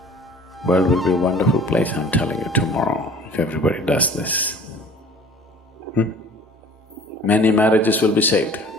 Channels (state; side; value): normal; both; correlation 0.47